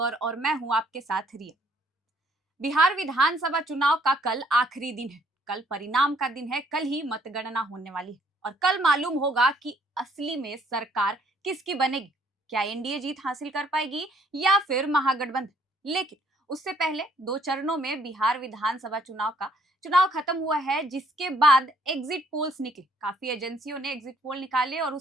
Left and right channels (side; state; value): both; normal; correlation 0.64